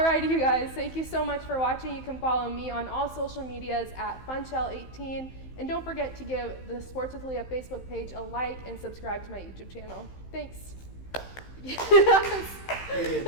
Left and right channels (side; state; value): right; late; 15 ms